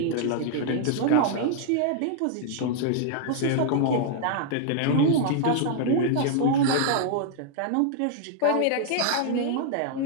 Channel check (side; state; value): both; different; correlation 0.00